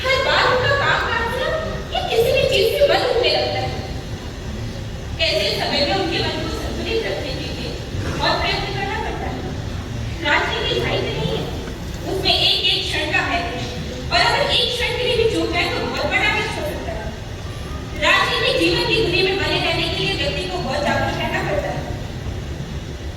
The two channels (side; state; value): both; identical; correlation 1.00